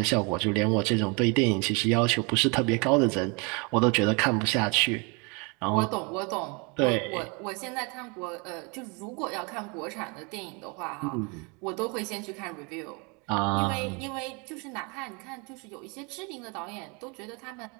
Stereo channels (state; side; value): quieter; left; 31.3 dB